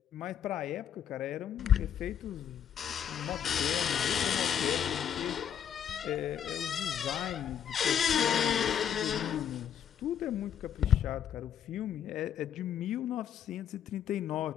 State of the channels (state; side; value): quieter; right; 9.0 dB